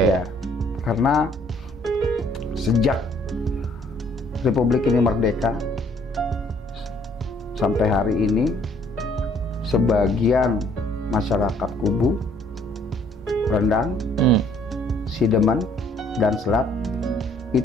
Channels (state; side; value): normal; both; correlation 0.62